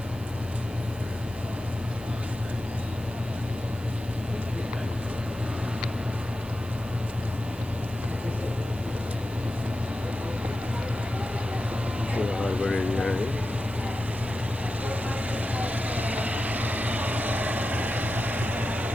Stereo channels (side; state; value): right; noise; hiss, 21 dB below the sound